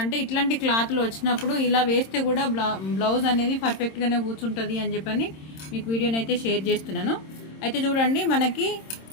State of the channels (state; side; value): late; right; 26 ms